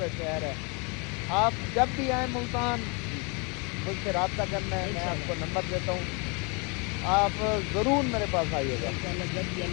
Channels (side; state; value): right; quieter; 32.4 dB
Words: शहर है। आप जब भी आए मुल्तान मुझसे रब्ता करना है, मैं आपको नंबर देता हूँ, आप ज़रूर मेरे पास आइएगा।